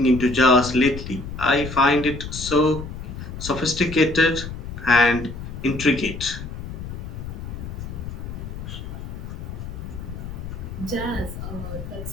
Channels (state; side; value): noise; left; rumble, 8 dB below the sound